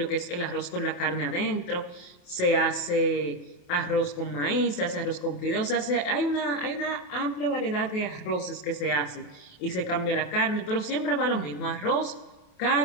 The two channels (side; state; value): right; late; 28 ms